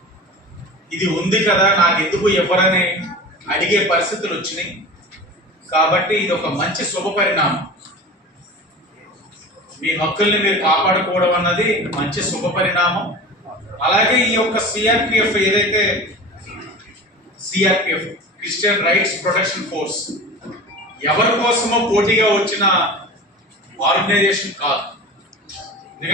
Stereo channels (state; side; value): normal; both; correlation 0.34